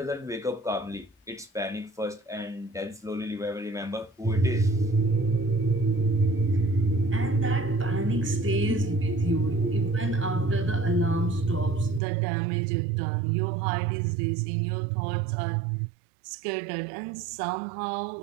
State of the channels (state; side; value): drops out; left; at 12.0 s